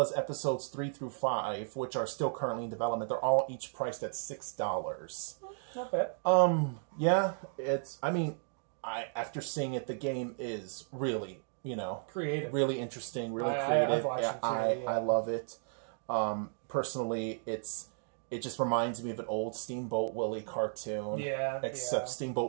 episodes 3 through 5, which are still currently in development. They're all each priced at $6. Not bad. Yeah, it's. I mean, after seeing it, the game is really, you know, creative, really interesting, really creative. I love it. Personally, it just reminds me of an old Steamboat Willie cartoon. Except Steamboat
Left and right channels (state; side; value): silent; left; digital silence